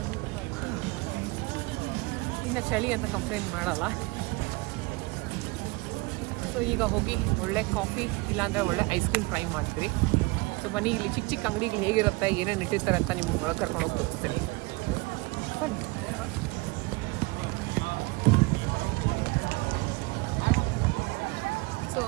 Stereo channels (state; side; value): quieter; left; 24.7 dB